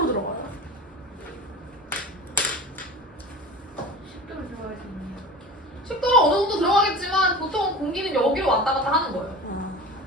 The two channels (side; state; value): both; normal; correlation 0.35